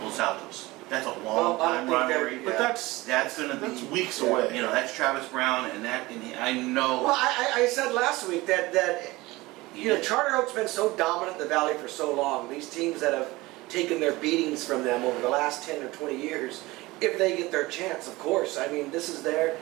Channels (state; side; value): quieter; left; 20.6 dB